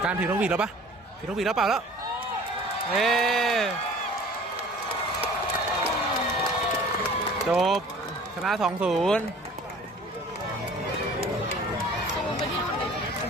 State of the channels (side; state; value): both; normal; correlation 0.47